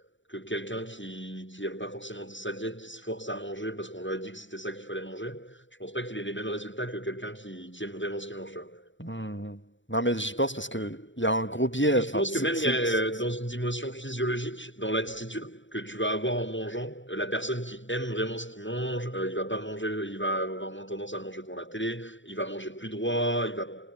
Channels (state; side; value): late; right; 0.55 ms